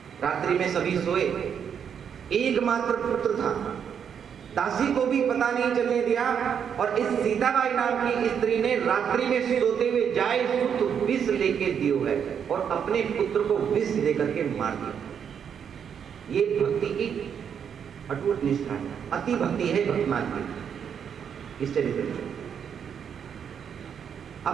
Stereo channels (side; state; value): left; quieter; 7.8 dB